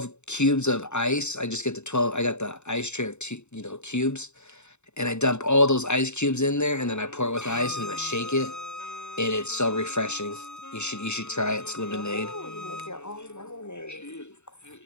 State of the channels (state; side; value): late; right; 0.82 ms